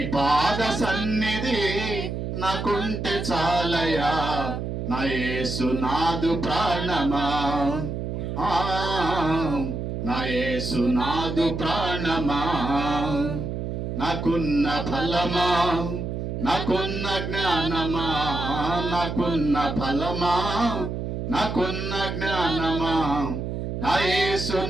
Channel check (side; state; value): right; noise; hum, 4 dB below the sound